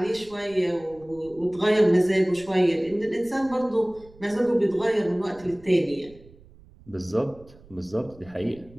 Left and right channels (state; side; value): noise; right; rumble, 24 dB below the sound